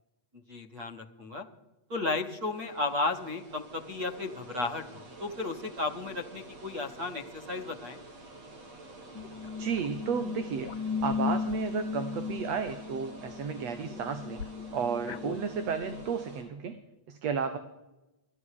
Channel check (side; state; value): left; late; 8.3 ms